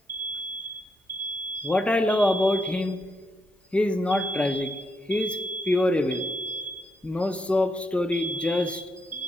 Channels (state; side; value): normal; both; correlation 0.79